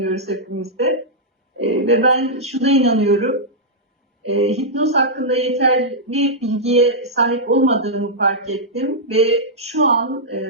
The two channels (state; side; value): normal; both; correlation -0.09